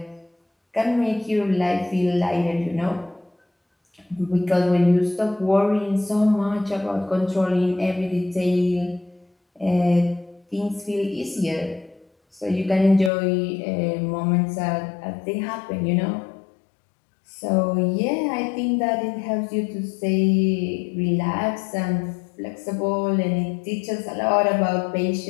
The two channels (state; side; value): drops out; right; at 13.1 s